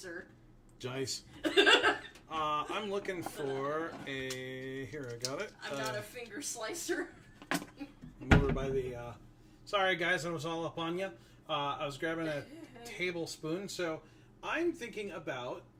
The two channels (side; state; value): both; identical; correlation 1.00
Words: Dice. I'm looking for a... Here, I got it. I'm not a finger slicer. I'm over by the... Sorry, guys, I was all up on you. I was grabbing a tablespoon, so I'm thinking about